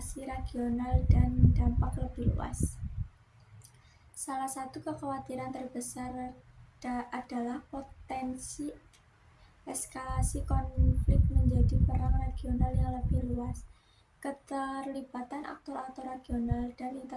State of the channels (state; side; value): identical; both; correlation 1.00